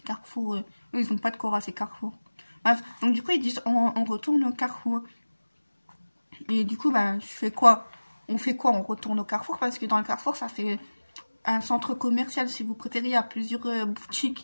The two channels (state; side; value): inverted; both; correlation -1.00